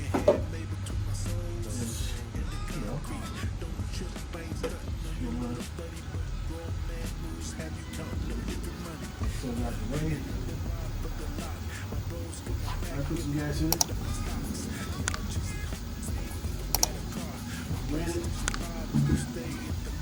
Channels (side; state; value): both; identical; correlation 1.00